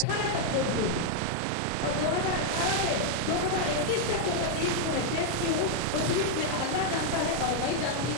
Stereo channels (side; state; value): both; different; correlation 0.00